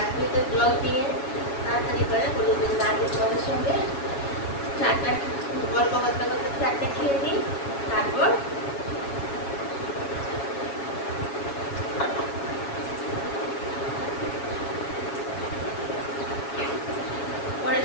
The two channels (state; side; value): late; right; 7.2 ms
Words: জল দিয়ে তাড়াতাড়ি করে বলে দিন আগে তোমাদের সঙ্গে চারটা গল্প করতে করতে চারটে খেয়ে নিই, তারপর পরে